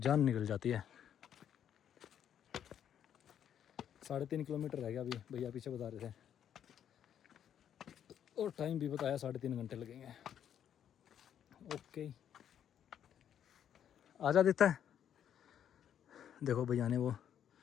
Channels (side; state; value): right; quieter; 9.5 dB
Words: निकल जाती है। 3.5 किलोमीटर रह गया अभी, भैया पीछे बता रहे थे, और टाइम भी बताया 3.5 घंटे लगेंगे। ओके आजा देता है। देखो भैया ने वो